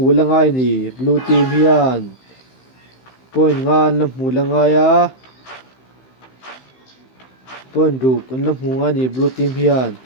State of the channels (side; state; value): right; late; 15 ms